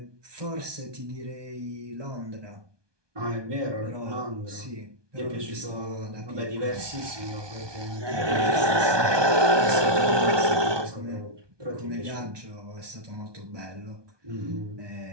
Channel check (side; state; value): left; late; 1.2 ms